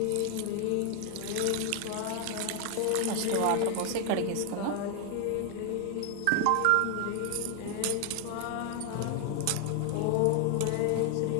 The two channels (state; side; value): different; both; correlation 0.00